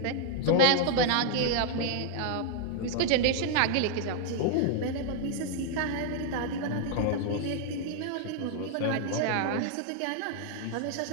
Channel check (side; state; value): both; different; correlation 0.00